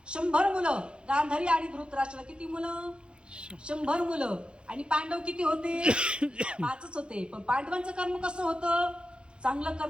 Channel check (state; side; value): late; left; 0.055 ms